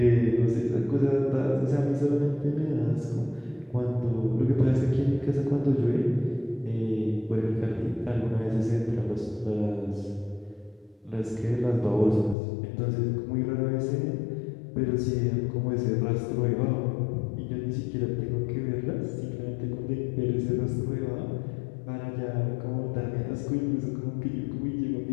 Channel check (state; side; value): drops out; right; at 12.4 s